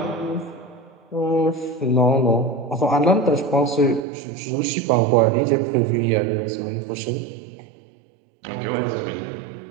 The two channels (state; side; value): drops out; left; at 4.0 s